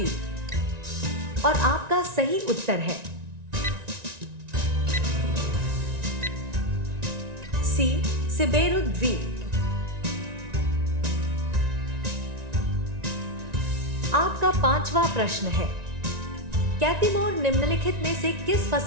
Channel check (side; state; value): left; late; 1.9 ms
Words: और आपका सही उत्तर है सी सिबेरु द्वीप। आपका पांचवा प्रश्न है, कैतिमोर निम्नलिखित में से किस